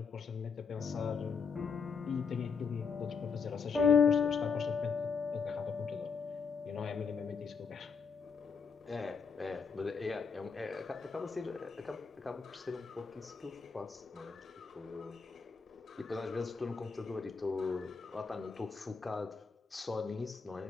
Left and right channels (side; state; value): right; quieter; 5.6 dB